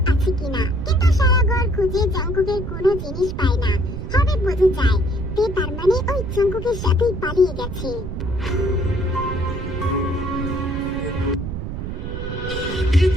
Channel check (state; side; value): noise; right; rumble, 6 dB below the sound